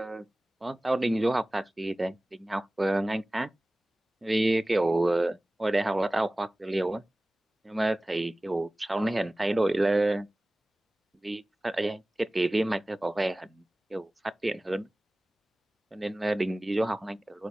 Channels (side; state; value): both; normal; correlation 0.98